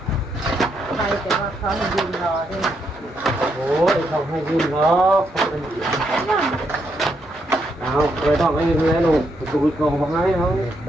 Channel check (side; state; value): both; normal; correlation 0.78